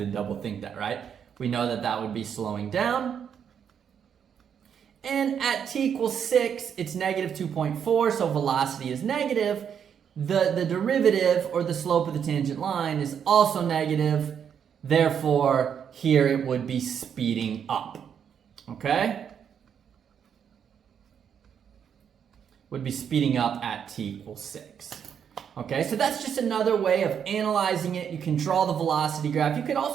double think that, right? We know that that would be slowing down. And at t equals 6, it's negative 2.4, so velocity is negative. The derivative, or the slope of the tangent line, is also negative. Therefore, here it would be speeding up. Okay? Would be speeding up at t equals 6. Okay, so that's just another way of analyzing it. You can draw the velocity graph. You could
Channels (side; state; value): left; quieter; 8.0 dB